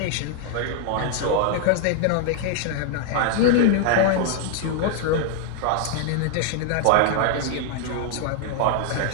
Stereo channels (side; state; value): both; different; correlation 0.00